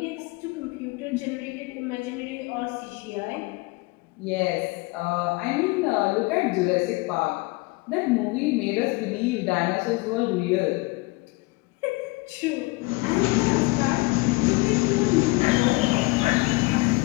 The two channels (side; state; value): right; quieter; 24.4 dB